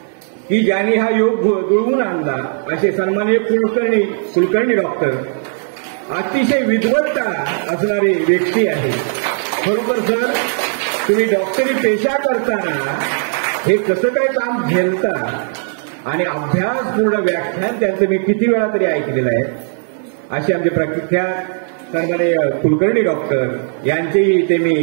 की ज्यांनी हा योग जुळवून आणला असे सन्माननीय कुलकर्णी डॉक्टर अतिशय विद्वत्ता असणारी व्यक्ती आहे. खरोखर सर, तुम्ही डॉक्टरी पेशा करताना हे कसं काय काम झेलता आणि अभ्यासपूर्ण व्याख्यान त्यांचं मी किती वेळा तरी ऐकलेलं आहे. असे आमचे प्रख्यात सन्माननीय कुलकर्णी डॉक्टर यांचेही ते मी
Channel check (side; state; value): left; silent; 68 dB below the other